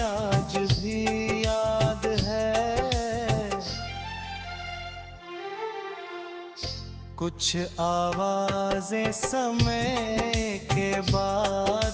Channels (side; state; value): both; identical; correlation 1.00